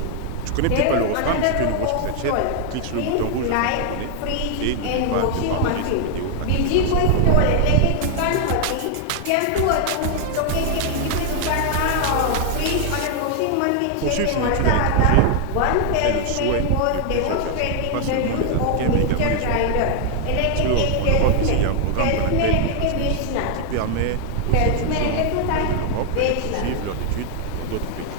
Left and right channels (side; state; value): both; different; correlation 0.00